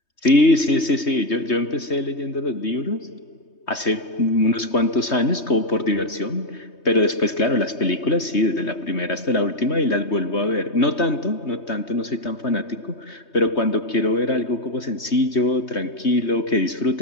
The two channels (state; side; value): late; right; 3.2 ms